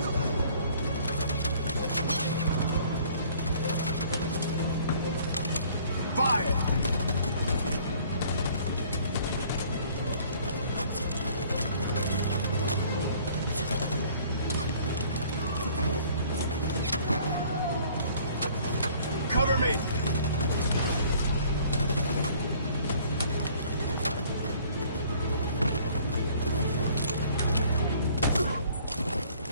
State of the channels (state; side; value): inverted; both; correlation -0.55